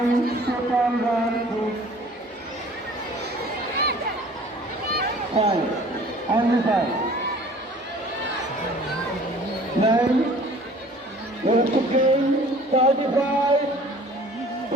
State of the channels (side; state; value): both; normal; correlation 0.49